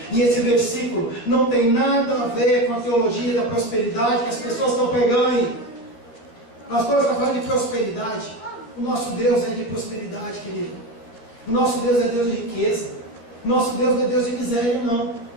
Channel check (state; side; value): late; right; 13 ms